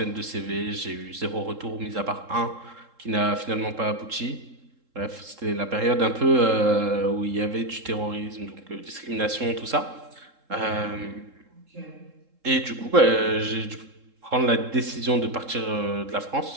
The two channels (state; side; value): late; left; 3.7 ms